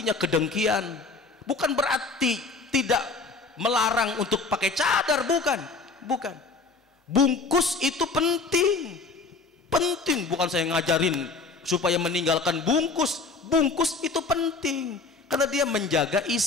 kedengkian. Bukan berarti tidak melarang untuk pakai cadar, bukan. Bungkus itu penting, bukan saya ngajarin supaya meninggalkan bungkus. Bungkus itu penting karena dia menjaga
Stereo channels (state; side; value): quieter; right; 4.0 dB